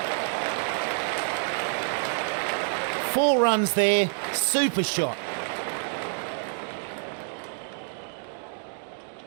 4 runs there, super shot.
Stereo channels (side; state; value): left; silent; 60 dB below the other